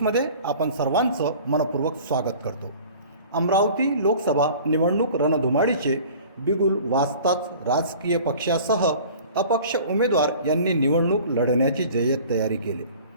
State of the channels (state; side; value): inverted; both; correlation -0.45